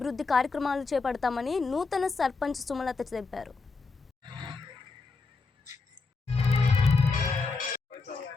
కార్యక్రమాలు చేపడతామని నూతన సర్పంచ్ సుమలత తెలిపారు.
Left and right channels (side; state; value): right; quieter; 4.2 dB